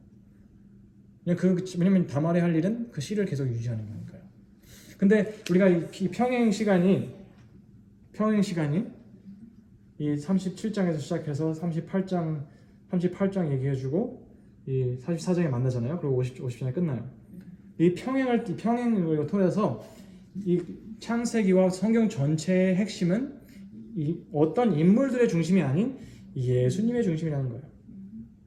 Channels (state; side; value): identical; both; correlation 1.00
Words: 왜냐면 다말이 할 일은 그 씨를 계속 유지하는 거니까요. 근데 우리가 이 평행 시간이 이 37장에서 시작해서 38장 얘기해주고 이 44장에 만나잖아요. 그리고 50장에 끝나요. 이 평행을 통해서 이 창세기와 성경 전체의 핵심은 이 어떤 인물들의 중심이 아닌 예수님의 중심이라는 거예요.